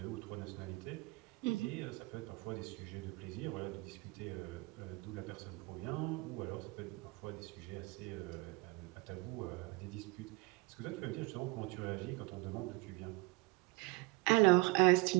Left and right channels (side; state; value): left; quieter; 24.2 dB